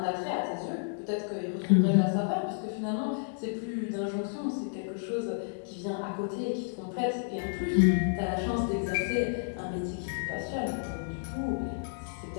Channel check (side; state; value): right; silent; digital silence